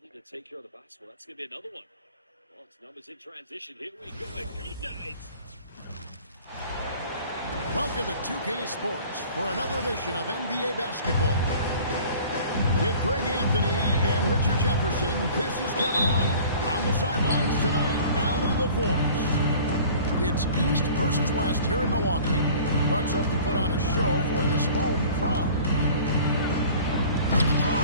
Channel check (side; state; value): both; inverted; correlation -0.46